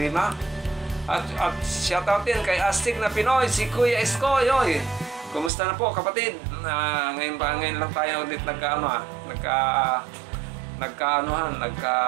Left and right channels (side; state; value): left; drops out; at 5.5 s